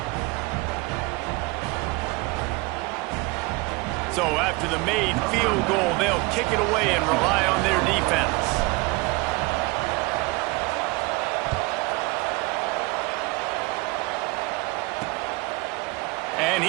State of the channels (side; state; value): left; quieter; 25.0 dB